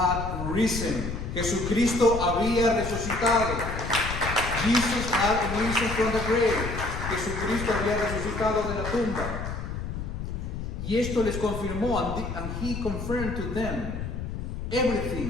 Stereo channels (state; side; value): noise; left; rumble, 5 dB below the sound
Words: risen. Jesucristo había resucitado. Jesus had risen from the grave. Jesucristo había resucitado de la tumba. Y esto les confirmó, and he confirmed to them